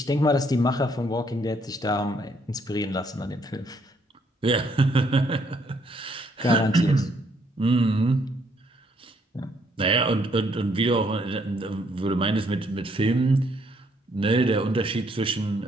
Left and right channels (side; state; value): both; normal; correlation 0.69